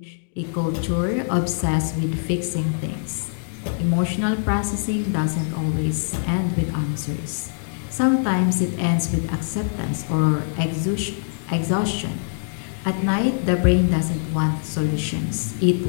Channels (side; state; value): right; silent; digital silence